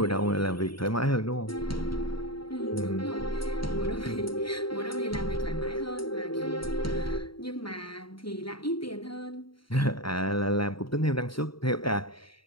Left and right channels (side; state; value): right; late; 0.74 ms